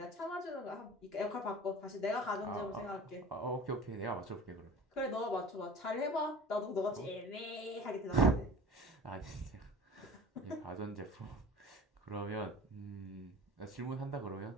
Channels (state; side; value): normal; both; correlation 0.39